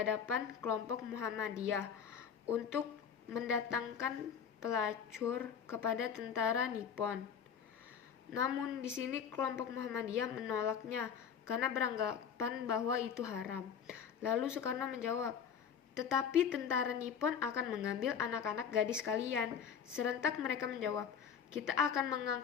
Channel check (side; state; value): right; quieter; 7.5 dB